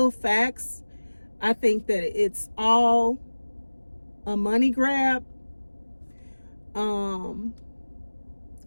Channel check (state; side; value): inverted; both; correlation -1.00